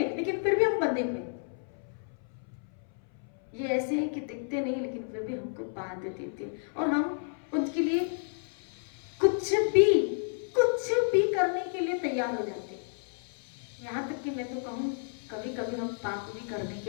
लेकिन फिर भी हम बंधे हुए। ये ऐसे है कि दिखते नहीं, लेकिन फिर भी हमको बांध देते हैं, और हम उनके लिए कुछ भी करने के लिए तैयार हो जाते हैं। यहाँ तक कि मैं तो कहूँ, कभी कभी हम पाप भी करने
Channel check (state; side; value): silent; right; 57 dB below the other